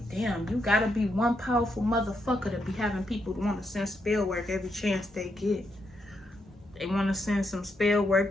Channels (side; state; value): both; normal; correlation 0.80